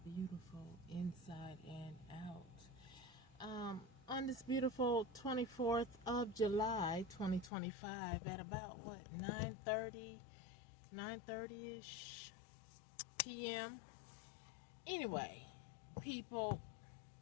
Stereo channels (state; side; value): drops out; right; at 7.5 s